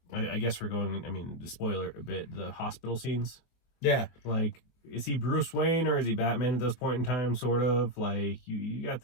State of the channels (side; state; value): right; late; 23 ms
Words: guess we're going. I mean, spoiler a bit. The hospital scenes. Yeah. Like, is he Bruce Wayne or is he Batman at this point in time? Sort of like you got